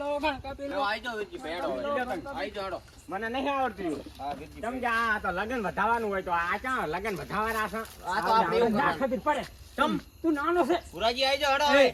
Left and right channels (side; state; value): both; identical; correlation 1.00